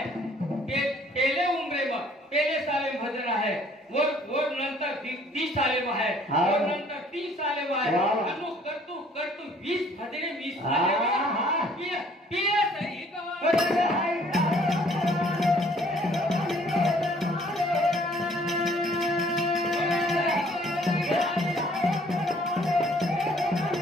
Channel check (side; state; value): both; normal; correlation 0.59